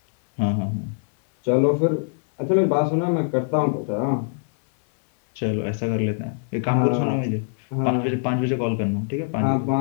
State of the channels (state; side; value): silent; right; 59 dB below the other